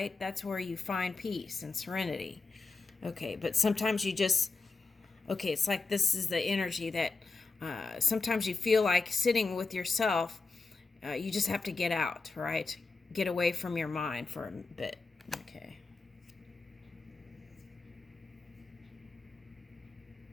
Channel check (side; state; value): right; quieter; 4.1 dB